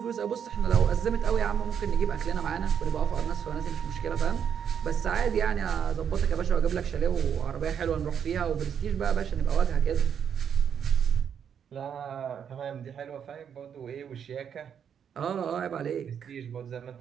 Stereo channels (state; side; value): quieter; left; 8.0 dB